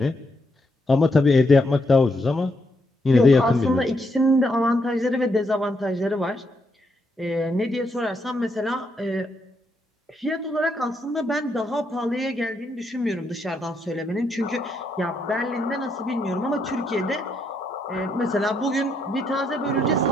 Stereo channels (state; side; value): normal; both; correlation 0.77